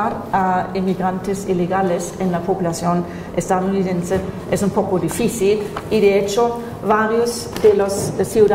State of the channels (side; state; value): both; identical; correlation 1.00